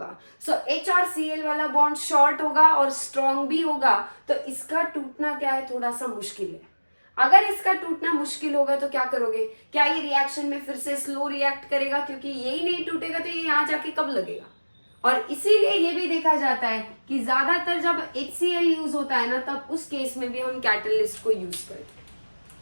सो H और Cl वाला बॉन्ड शॉर्ट होगा और स्ट्रॉन्ग भी होगा, तो इसका टूटना क्या है, थोड़ा सा मुश्किल है। अगर इसका टूटना मुश्किल होगा तो क्या करोगे, क्या ये रिएक्शन में फिर से स्लो रिएक्ट करेगा, क्योंकि यही नहीं टूटेगा तो ये यहाँ जाके कब लगेगा। और इसीलिए ये भी देखा जाता है कि ज्यादातर जब HCl यूज होता है ना, तब उस केस में भी हम कैटलिस्ट को यूज करते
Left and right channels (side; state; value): both; inverted; correlation -1.00